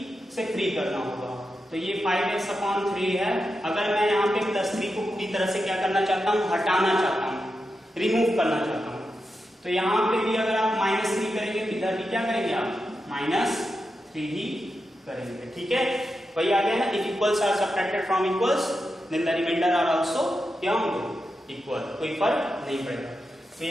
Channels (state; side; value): normal; both; correlation 0.88